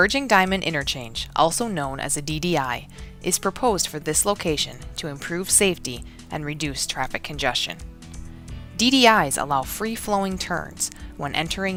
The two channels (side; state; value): both; identical; correlation 1.00